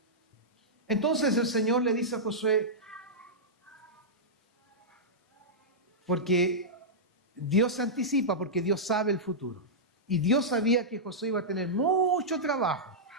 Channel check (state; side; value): normal; both; correlation -0.12